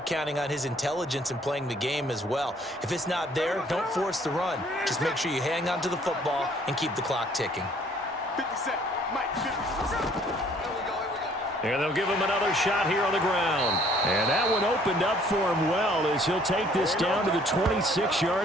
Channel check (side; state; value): both; normal; correlation 0.60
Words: counting on his intelligence in playing the game as well. If it's not there, don't force the run. Just make sure you hang on to the football and keep the clock ticking. 50 Cent. Mike, 50 Cent. And they'll give him another shot here on the ground. And that one opened up for him well as he'll take this down to the